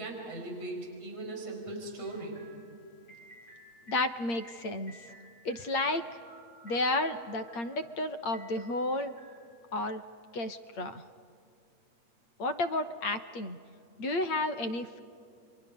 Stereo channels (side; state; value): right; late; 8.6 ms